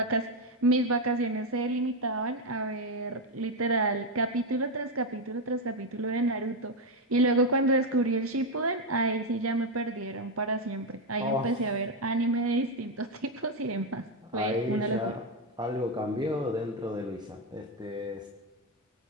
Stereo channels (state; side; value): normal; both; correlation 0.06